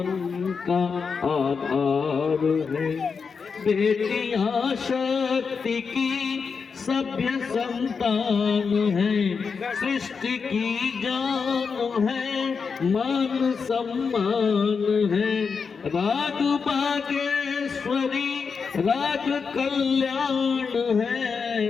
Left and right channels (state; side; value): quieter; right; 5.5 dB